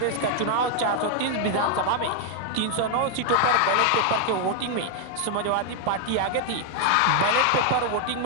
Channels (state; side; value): different; both; correlation 0.00